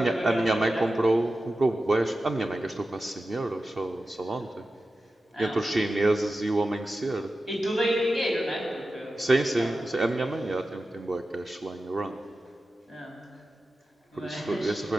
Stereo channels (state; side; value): normal; both; correlation 0.93